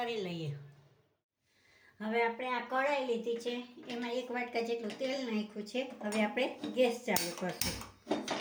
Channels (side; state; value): both; identical; correlation 1.00